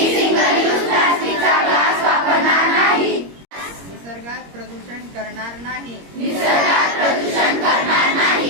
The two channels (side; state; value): left; late; 21 ms